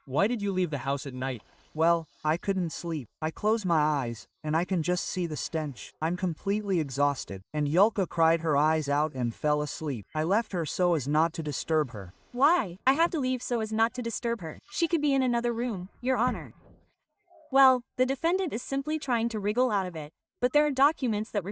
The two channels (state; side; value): identical; both; correlation 1.00